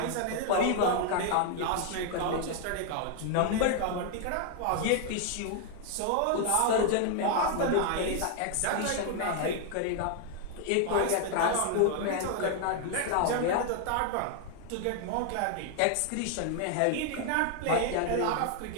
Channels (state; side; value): different; both; correlation 0.00